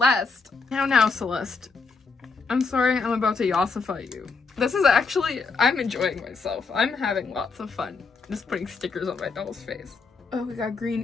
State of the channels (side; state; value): right; quieter; 4.6 dB